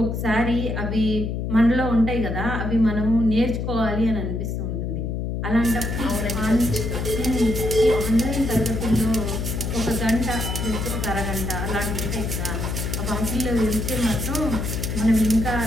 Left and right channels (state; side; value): noise; left; hum, 2 dB below the sound